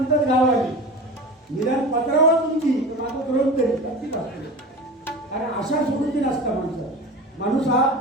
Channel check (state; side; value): normal; both; correlation 0.32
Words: गावाने निदान पत्रावर तुमची माझं करून तरी नक्कीच असते. कारण आशा सोडून नसता माणूस हा